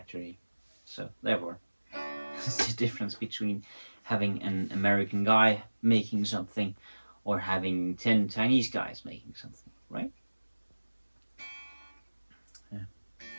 So therefore, it's the difference between having an American guy making something or having 10 Chinese guys making something, right? Yeah.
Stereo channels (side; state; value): both; inverted; correlation -1.00